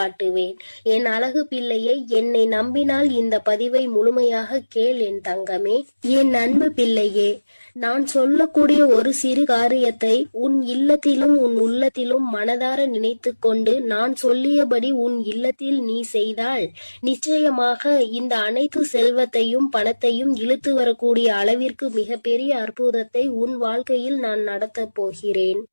என் அழகு பிள்ளையை, என்னை நம்பினால் இந்த பதிவை முழுமையாக கேள் என் தங்கமே. என் அன்பு பிள்ளையே, நான் சொல்லக்கூடிய ஒரு சிறு காரியத்தை உன் இல்லத்திலும் உன் உள்ளத்திலும் மனதார நினைத்து கொண்டு நான் சொல்லியபடி உன் இல்லத்தில் நீ செய்தால் நிச்சயமாக இந்த அனைத்து செல்வத்தையும் பணத்தையும் இழுத்து வரக்கூடிய அளவிற்கு மிகப்பெரிய அற்புதத்தை உன் வாழ்க்கையில் நான் நடத்த போகிறேன்.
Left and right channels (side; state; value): both; inverted; correlation -1.00